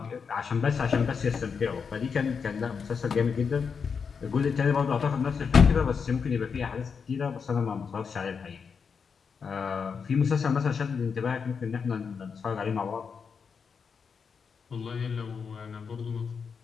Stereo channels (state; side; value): quieter; right; 6.0 dB